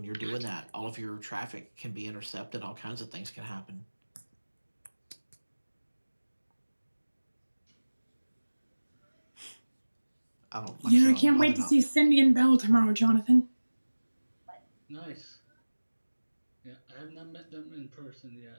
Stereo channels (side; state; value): both; inverted; correlation -1.00